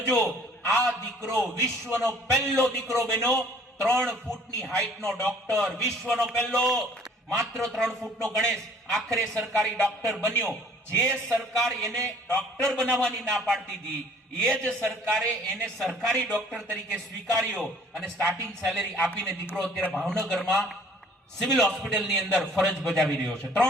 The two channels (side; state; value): both; normal; correlation 0.55